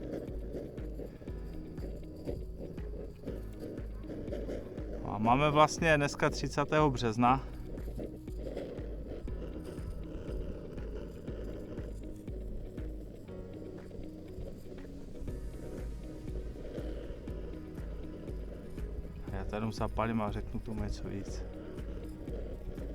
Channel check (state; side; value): identical; both; correlation 1.00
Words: A máme vlastně dneska 30. března. Já tady zapálím a řeknu tomu něco víc.